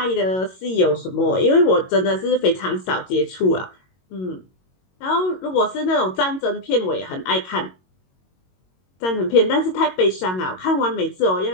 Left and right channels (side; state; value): right; late; 22 ms